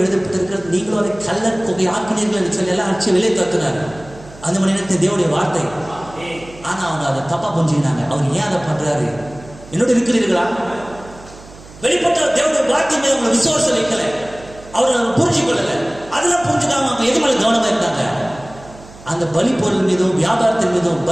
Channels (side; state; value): right; noise; hum, 20 dB below the sound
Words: நீங்களும் அதை கள்ளர் தொகை ஆக்கினீர்கள் என்று சொல்லி எல்லாம் அடிச்சு வெளியே தத்துனார். அந்த மணி நேரத்தில் தேவனுடைய வார்த்தை. ஆனா அவங்க அதை தப்பா புரிஞ்சுக்கினாங்க. அவர் ஏன் அதை பண்றாரு? என்னோட இருக்கிறீர்களா? வெளிப்பட்ட தேவனுடைய வார்த்தை மீது அவங்க விசுவாசம் வைக்கல, அவர் புரிஞ்சு கொள்ளல. அதெல்லாம் புரிஞ்சுக்காம அவங்க எது மேல கவனமா இருந்தாங்க? அந்த பலி பொருள் மீதும் வியாபாரத்தின் மீதும்,